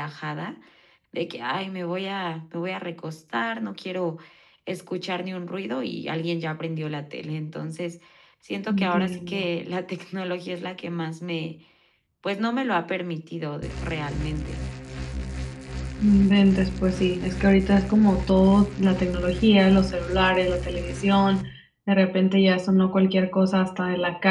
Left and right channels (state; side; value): identical; both; correlation 1.00